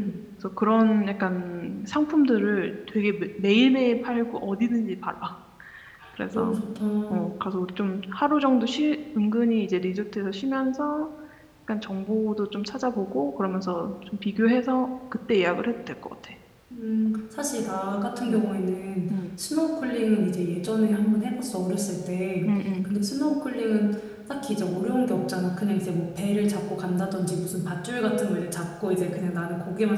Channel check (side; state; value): both; identical; correlation 1.00